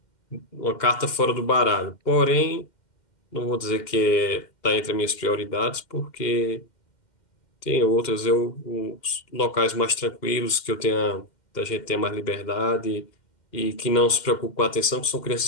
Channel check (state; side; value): late; right; 2.1 ms